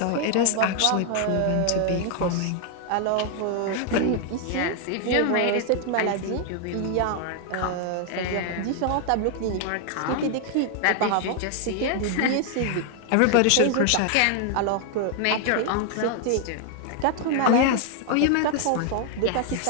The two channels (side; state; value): both; different; correlation 0.00